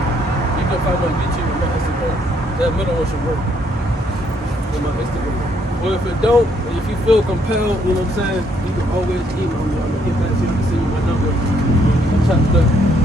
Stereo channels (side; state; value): both; normal; correlation 0.69